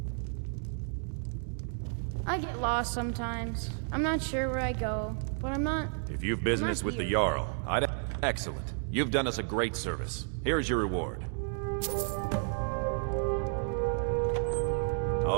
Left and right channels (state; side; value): silent; left; 57 dB below the other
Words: I get lost sometimes. I'm not sure where I go, but I'm not... If you've business with the Jarl, I'd... Excellent. You've done us a great service. Here's your reward.